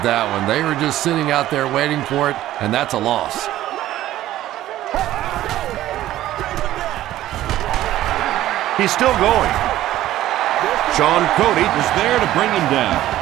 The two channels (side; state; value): left; quieter; 14.1 dB